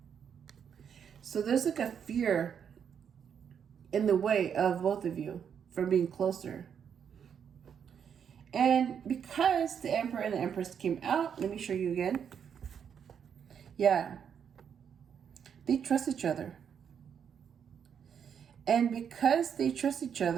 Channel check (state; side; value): quieter; left; 7.8 dB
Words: So there's like a fear in the way of both of you from being closer. And because the Emperor and the Empress came out, let me show you again. Yeah. They trust each other. And because they trust each